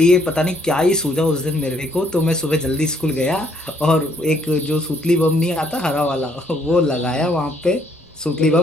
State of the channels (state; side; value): normal; both; correlation 0.67